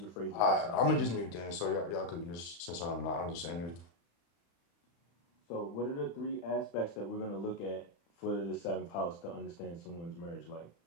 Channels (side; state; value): right; late; 35 ms